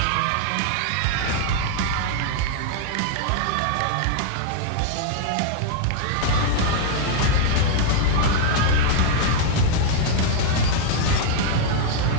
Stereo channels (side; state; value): both; different; correlation 0.00